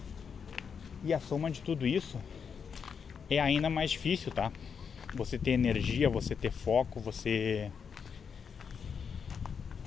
E a soma de tudo isso é ainda mais difícil, tá? Você ter energia, você ter foco, você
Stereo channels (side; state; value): right; quieter; 6.5 dB